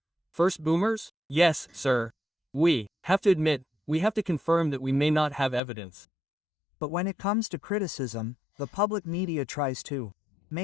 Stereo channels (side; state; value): right; drops out; at 5.6 s